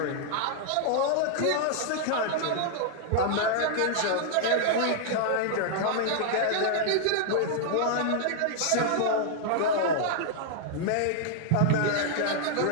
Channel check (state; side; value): different; both; correlation -0.01